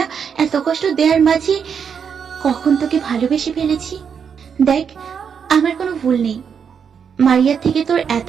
এত কষ্ট দেওয়ার মাঝে কখন তোকে ভালোবেসে ফেলেছি। দেখ, আমার কোনো ভুল নেই। মারিয়ার থেকে তোর এত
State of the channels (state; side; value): quieter; left; 7.0 dB